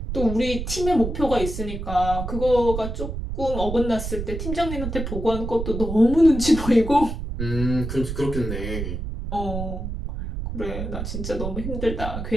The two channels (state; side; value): noise; right; rumble, 5 dB below the sound